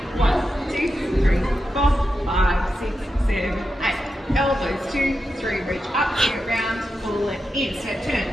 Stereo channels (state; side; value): normal; both; correlation 0.89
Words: 1, 2, 3, 4, 5, 6, 7, 8. Elbows 2, 3, reach up, get round, pull it in. Step turn.